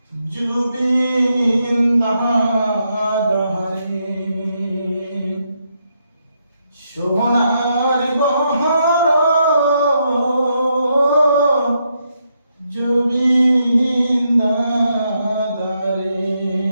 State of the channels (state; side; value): inverted; both; correlation -0.79